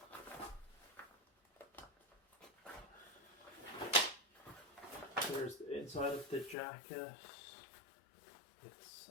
There's the inside of the jacket.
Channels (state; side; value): drops out; right; at 6.6 s